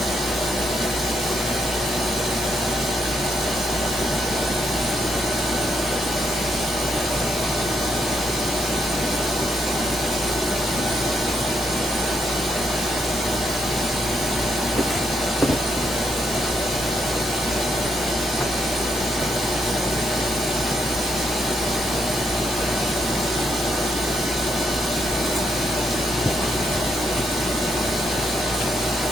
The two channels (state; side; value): normal; both; correlation 0.77